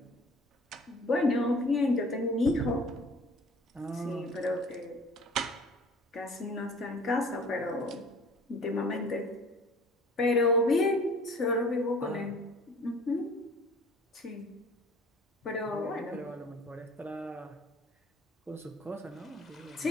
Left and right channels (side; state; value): both; normal; correlation 0.48